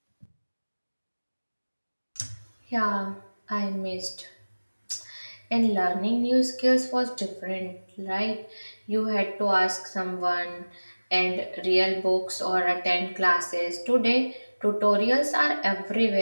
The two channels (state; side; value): inverted; both; correlation -1.00